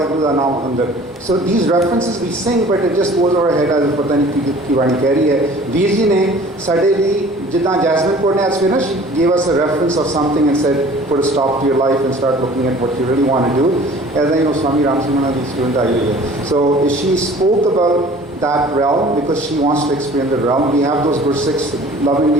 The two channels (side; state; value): both; normal; correlation 0.48